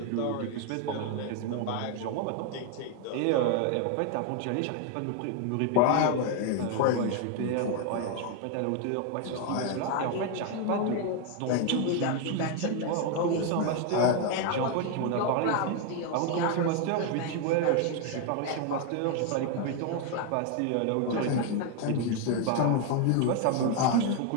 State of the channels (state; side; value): different; both; correlation 0.01